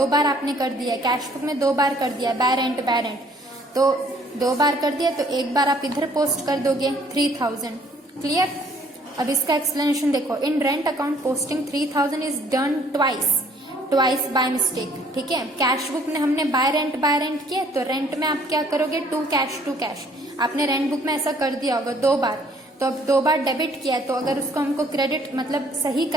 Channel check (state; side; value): normal; both; correlation 0.60